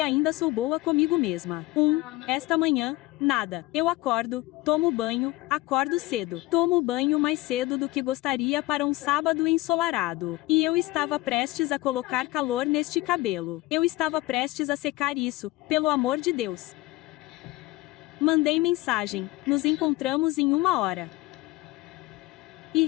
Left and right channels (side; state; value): right; quieter; 19.3 dB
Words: sou boa comigo mesma. Esta manhã, nada. Eu acordo, tomo banho, acordo cedo. Tomo banho mais cedo do que gostaria para um sábado ensolarado. E eu estava prestes a colocar calor neste cabelo. Eu estava prestes a secar isso, pelo amor de Deus. Mandei mensagem. Nos encontramos em 1 hora. E